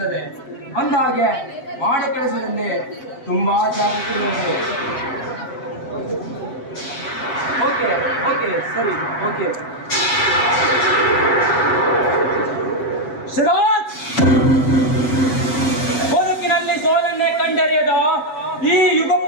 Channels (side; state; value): right; late; 7.7 ms